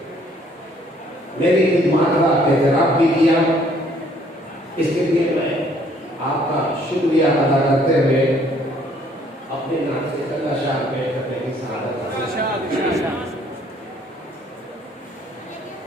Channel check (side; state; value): both; normal; correlation 0.62